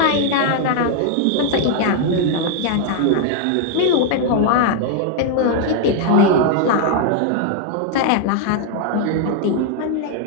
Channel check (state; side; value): different; both; correlation 0.00